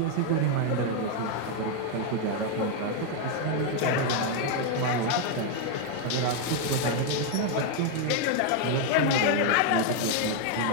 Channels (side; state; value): both; different; correlation 0.01